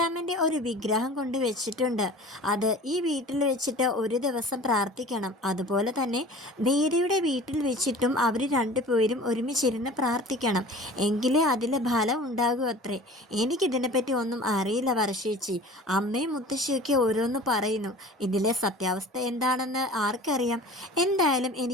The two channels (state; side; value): normal; both; correlation 0.42